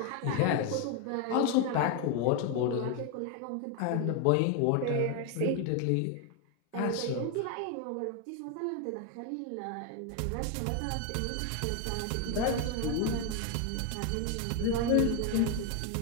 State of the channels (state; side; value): different; both; correlation 0.01